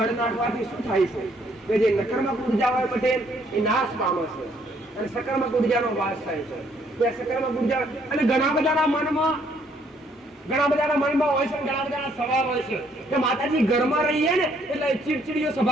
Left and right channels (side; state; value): both; normal; correlation 0.67